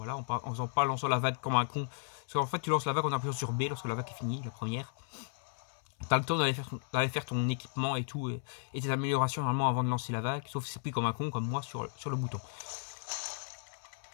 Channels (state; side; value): silent; right; 55 dB below the other